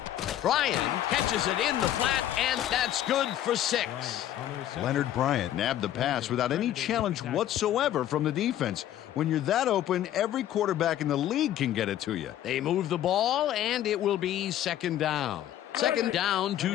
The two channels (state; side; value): quieter; right; 12.1 dB